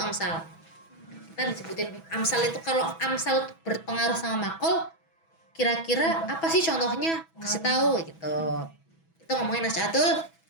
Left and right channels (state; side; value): late; right; 6.1 ms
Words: amsal. Kita disebutin amsal itu, kalau amsal berpengaruh sama maqal, kira-kira apa sih contohnya? Kasih tahu gitu. Itu ngomongin Nasy'atul